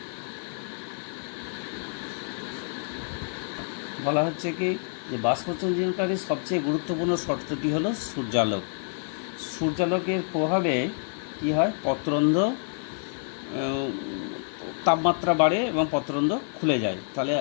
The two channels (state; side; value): silent; right; digital silence